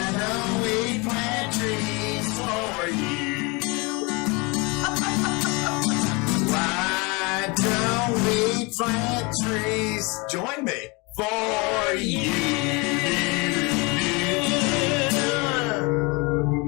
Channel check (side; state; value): right; quieter; 27.8 dB